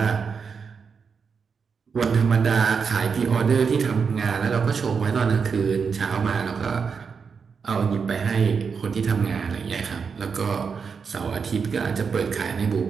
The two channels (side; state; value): left; quieter; 5.8 dB